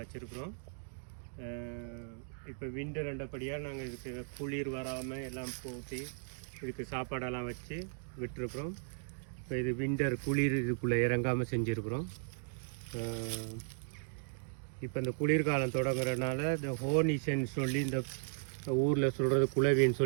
இப்போ விண்டர் ரெண்டபடியாக நாங்கள் இதுக்கு குளிர் வராமல் எல்லாம் போட்டி இதுக்கு சாப்பாடெல்லாம் வச்சு விட்டுருக்குறோம். இப்போ இது விண்டர் குளிர் இதுக்குள்ளே இறங்காமல் செஞ்சுருக்குறோம். இப்போ இந்த குளிர்காலம் தொடங்குறதுனால இந்த ஹோனிசன் சொல்லி இந்த ஊரில் சொல்கிறது குளவின்னு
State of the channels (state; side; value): silent; left; digital silence